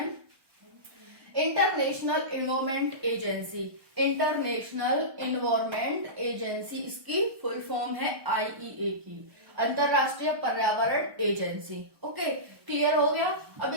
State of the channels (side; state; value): left; late; 1.1 ms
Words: International environment agency, international environment agency इसकी फुल फॉर्म है आईईए की, अंतरराष्ट्रीय पर्यावरण एजेंसी। ओके, क्लियर हो गया। अब